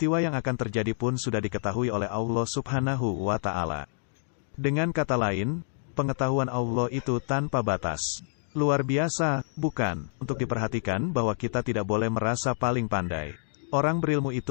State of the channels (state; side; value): silent; right; digital silence